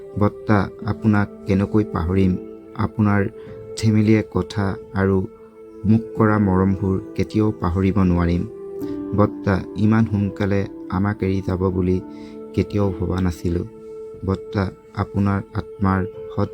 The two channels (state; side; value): identical; both; correlation 1.00